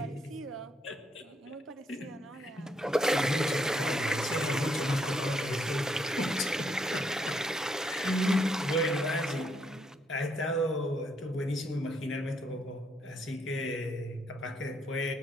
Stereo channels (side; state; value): both; normal; correlation 0.73